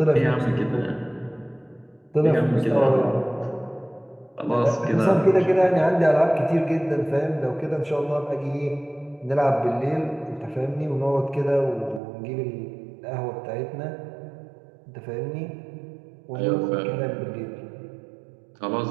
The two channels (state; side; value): drops out; left; at 12.0 s